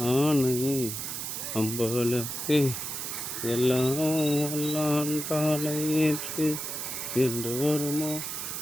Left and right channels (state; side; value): noise; right; hiss, 5 dB below the sound